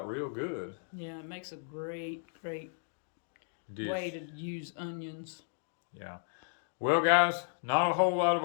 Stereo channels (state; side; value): silent; right; digital silence